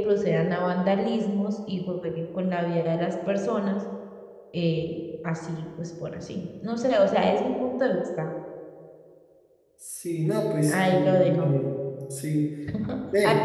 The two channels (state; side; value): identical; both; correlation 1.00